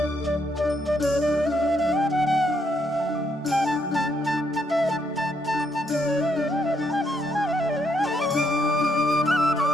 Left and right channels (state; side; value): normal; both; correlation 0.75